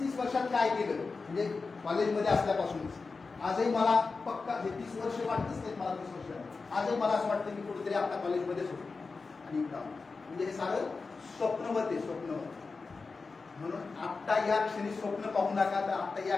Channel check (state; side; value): quieter; right; 4.3 dB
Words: वर्षात काय केलं, म्हणजे कॉलेजमध्ये असल्यापासूनच आजही मला पक्का हे 30 वर्ष वाटतच नाही मला, 30 वर्ष आजही मला असं वाटतं की कुठेतरी आपल्या कॉलेजमध्येच होतो. आणि म्हणजे हे सारं स्वप्नवत आहे, स्वप्नवत. म्हणून आत्ता या क्षणी स्वप्न पाहू नका. तर आत्ता या